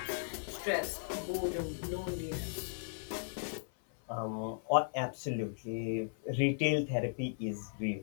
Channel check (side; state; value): right; silent; 53 dB below the other